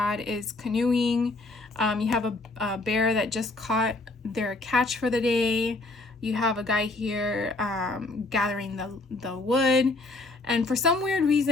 is canoeing. You have a bear that just caught their catch for the day. You have a guy here gathering the wood. And for some weird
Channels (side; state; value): right; quieter; 3.1 dB